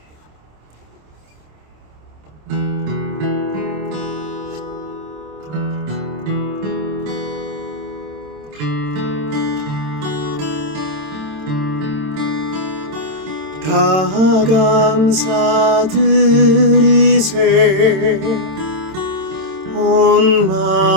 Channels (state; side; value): late; left; 27 ms